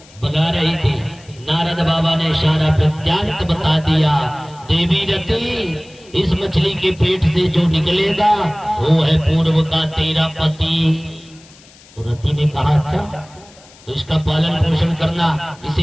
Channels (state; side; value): noise; left; hiss, 25 dB below the sound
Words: बना रही थी। नारद बाबा ने सारा वृत्तांत बता दिया। देवी रति, इस मछली के पेट से जो निकलेगा वो है पूर्व का तेरा पति। तो रति ने कहा अच्छा, तो इसका पालन पोषण करना,